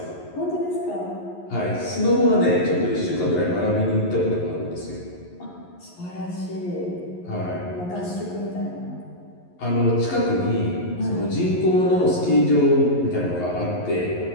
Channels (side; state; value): right; late; 11 ms